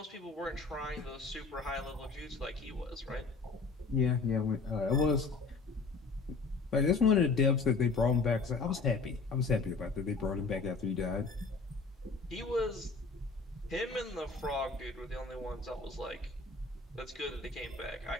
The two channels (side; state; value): right; quieter; 4.2 dB